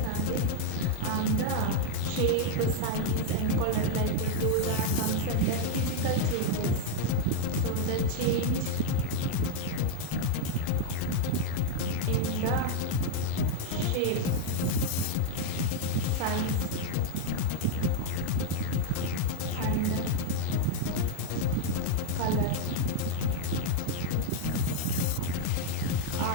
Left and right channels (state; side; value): different; both; correlation 0.00